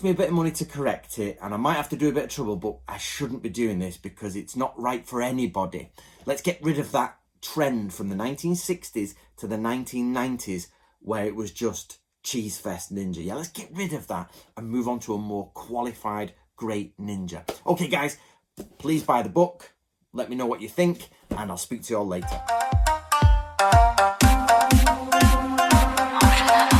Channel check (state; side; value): identical; both; correlation 1.00